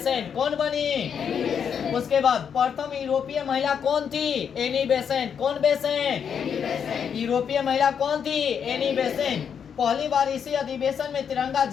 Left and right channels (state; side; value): quieter; right; 7.5 dB